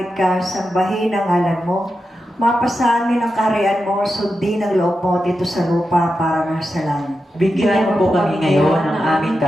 ka, sambahin ang ngalan mo. Mapasa amin ang kaharian mo, sundin ang loob mo dito sa lupa para nasa langit. Bigyan mo po kami ngayon ng aming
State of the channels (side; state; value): both; normal; correlation 0.89